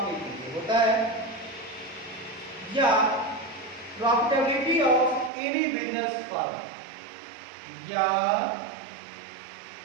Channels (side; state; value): left; drops out; at 5.3 s